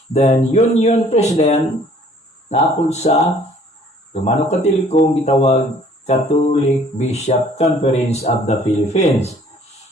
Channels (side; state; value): both; normal; correlation 0.57